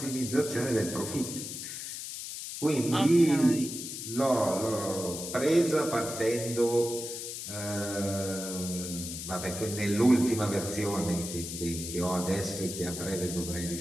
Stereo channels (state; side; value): noise; left; hiss, 7 dB below the sound